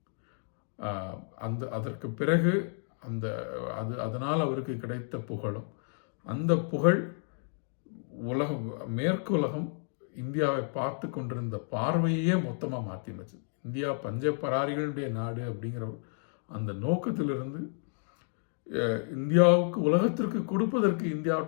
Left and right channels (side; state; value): right; silent; 57 dB below the other